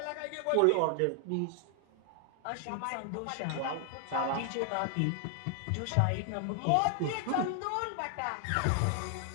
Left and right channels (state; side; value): different; both; correlation 0.00